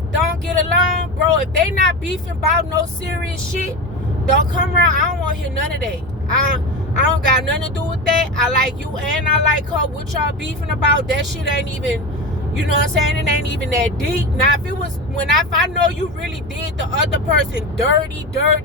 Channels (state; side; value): normal; both; correlation 0.23